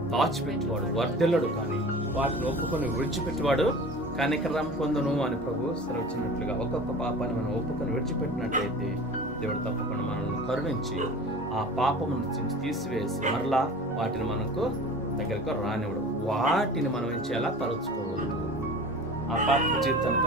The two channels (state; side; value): normal; both; correlation 0.38